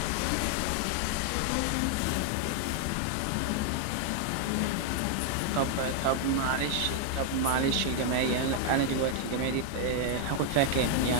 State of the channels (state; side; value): different; both; correlation 0.00